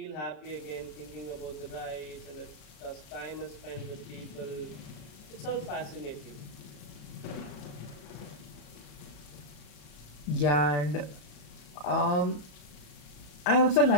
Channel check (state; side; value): late; right; 33 ms